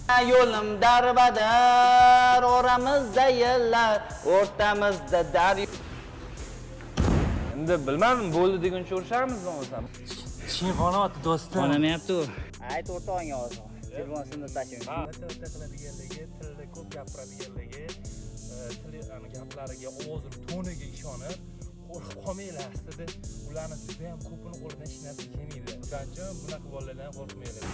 Yo'lim darbadar, oramizda yillar, o'rtamizda daryo. Endi bilmadim, bo'ldi deguncha urishamizmi o'zim? Chinqonoti do'stim. Onamayapti u. Ayt o'rtog'ingga hozir. Telefonni tashing. O'ta qiladiganligi, tilda ko'p gapiradiganligi, gaplariga, ovozi toniga ishonib, qo'rqib qolmanglar aslida. Ularni juda ham ko'pini qo'lidan hech narsa kelmaydi. Shuning uchun bunaqa bolalardan qo'rqmanglar.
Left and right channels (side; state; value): both; identical; correlation 1.00